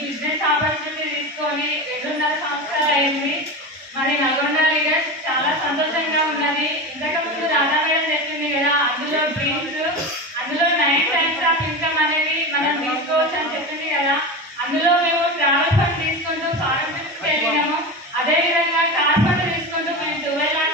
opportunity తీసుకొని 2.5 సంవత్సరాలు అయింది. మరి నల్గొండ లీడర్స్ చాలా సంతోషంగా ఉన్నది. ఇంతకుముందు రాధా మేడం చెప్పింది కదా, అందులో డ్రీమ్స్, అందులో 9 టైమ్స్ ఆఫ్ ఇన్కమ్ అనేది మనం తీసుకోవచ్చు అని చెప్పింది కదా. అందులో మేము ట్రావెల్ ఫండ్ తీసుకుంటూ ఫారెన్ ట్రిప్స్కి వెళ్ళినాము. అదేవిధంగా కార్ ఫండ్ తీసుకుంటూ మేము 12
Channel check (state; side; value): normal; both; correlation 0.24